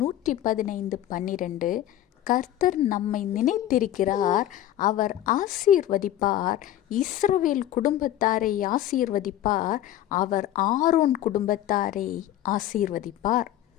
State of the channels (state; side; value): quieter; right; 12.7 dB